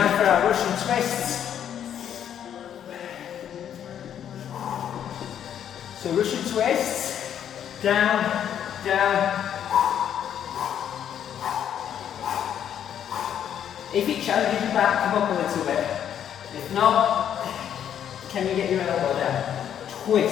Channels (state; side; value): quieter; right; 9.5 dB